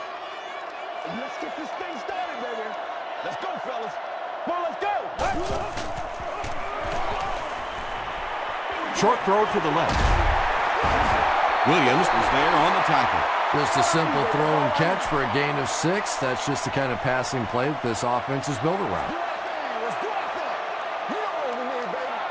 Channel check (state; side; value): identical; both; correlation 1.00